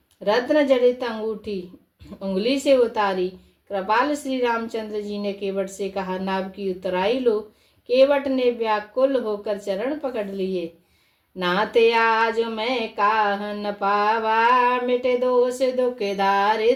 रत्न जड़ित अंगूठी उंगली से उतारी। कृपाल श्री रामचंद्र जी ने केवट से कहा, नाव की उतराई लो। केवट ने व्याकुल होकर चरण पकड़ लिए। नाते आज मैं काह न पावा, मिटे दोष दुख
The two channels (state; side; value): identical; both; correlation 1.00